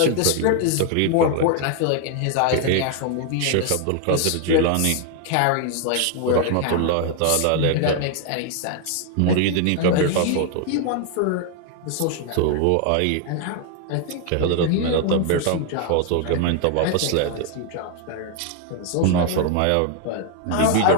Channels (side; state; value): both; different; correlation 0.00